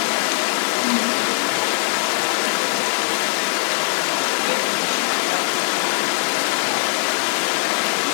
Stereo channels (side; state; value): right; silent; digital silence